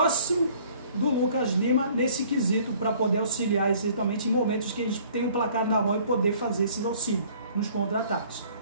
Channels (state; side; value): inverted; both; correlation -0.55